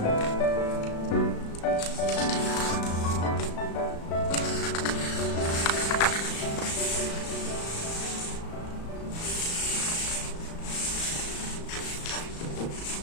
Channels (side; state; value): right; late; 35 ms